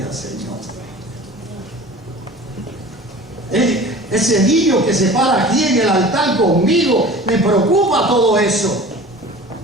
Señor. Ese niño que se para aquí en el altar conmigo, me preocupa todo eso.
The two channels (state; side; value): normal; both; correlation 0.40